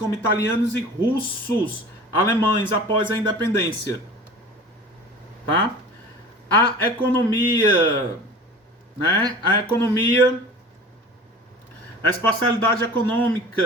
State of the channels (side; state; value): both; normal; correlation 0.40